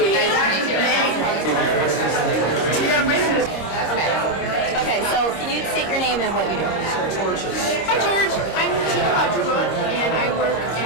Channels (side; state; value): right; late; 26 ms